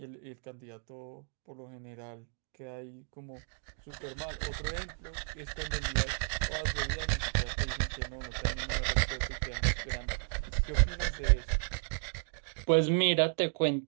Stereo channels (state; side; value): silent; left; digital silence